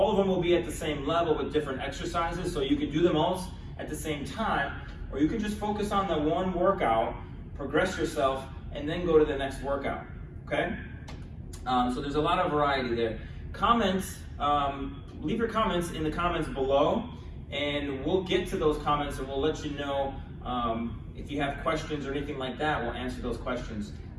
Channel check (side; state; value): both; identical; correlation 1.00